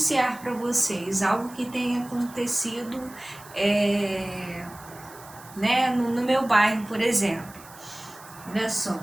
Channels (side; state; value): right; noise; hiss, 20 dB below the sound